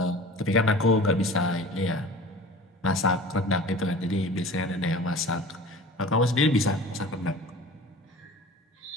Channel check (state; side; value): normal; both; correlation 0.40